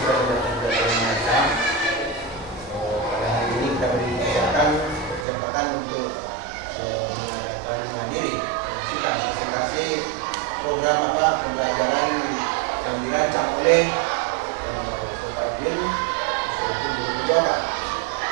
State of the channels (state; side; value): drops out; left; at 5.2 s